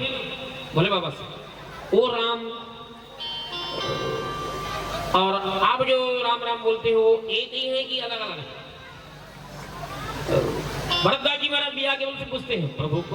भोले बाबा से, वो राम और आप जो राम राम बोलते हो एक ही है कि अलग अलग है? भरतदास जी महाराज भी आगे उनसे पूछते हैं, प्रभु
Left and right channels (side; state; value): both; identical; correlation 1.00